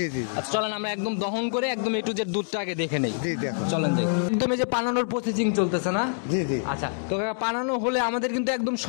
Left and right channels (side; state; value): right; silent; digital silence